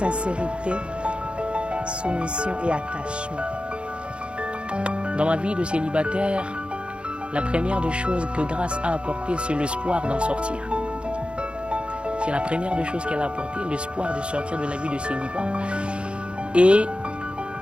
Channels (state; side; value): late; left; 0.057 ms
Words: soumission et attachement. Dans ma vie de célibataire, la première des choses que grâce a apporté, c'est l'espoir d'en sortir. C'est la première des choses qu'elle a apporté, l'espoir de sortir de la vie de célibat. Et